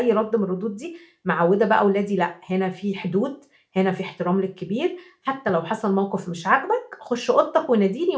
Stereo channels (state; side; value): identical; both; correlation 1.00